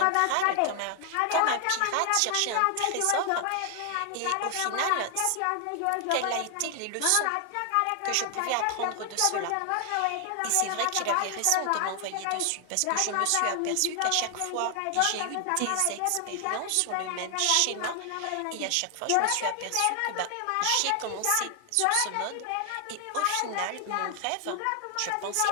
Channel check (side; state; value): both; different; correlation 0.00